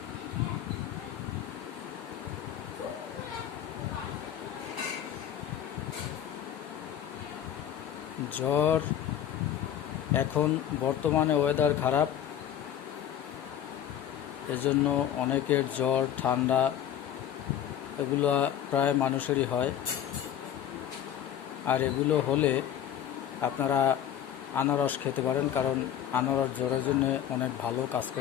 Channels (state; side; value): quieter; right; 10.2 dB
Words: জ্বর, এখন বর্তমানে ওয়েদার খারাপ, এজন্য অনেকের জ্বর ঠান্ডা এগুলো প্রায় মানুষেরই হয়। আর এগুলো হলে আপনারা আনারস খেতে পারেন, কারণ আনারস জ্বরের জন্য অনেক ভালো কাজ